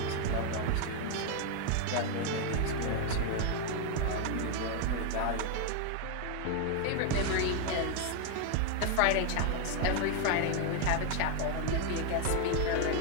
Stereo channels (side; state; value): both; different; correlation 0.01